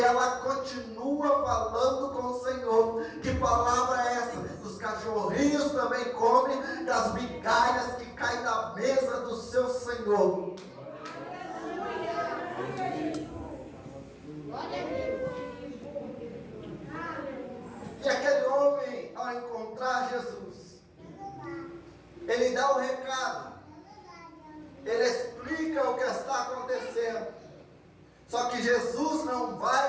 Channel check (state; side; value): identical; both; correlation 1.00